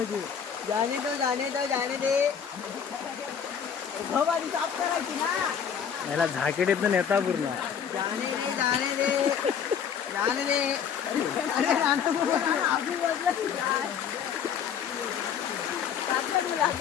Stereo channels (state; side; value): quieter; right; 7.7 dB